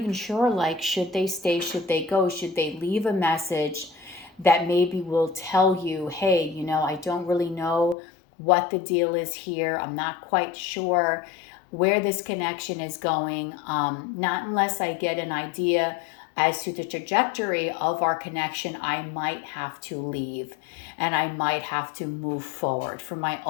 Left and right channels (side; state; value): right; drops out; at 8.0 s